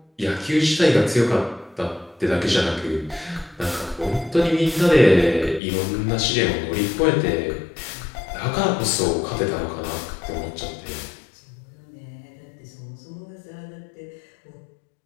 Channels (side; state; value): right; drops out; at 5.6 s